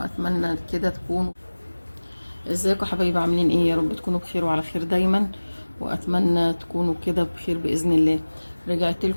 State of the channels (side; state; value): both; inverted; correlation -1.00